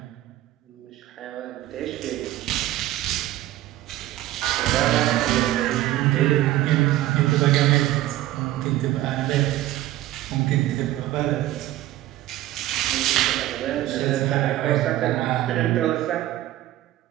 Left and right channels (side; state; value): left; quieter; 15.0 dB